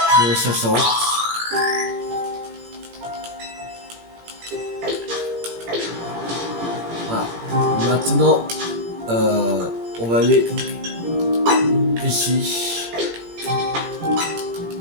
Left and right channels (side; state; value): left; late; 17 ms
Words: Mon 60. Voilà. Maintenant, on va aller ici.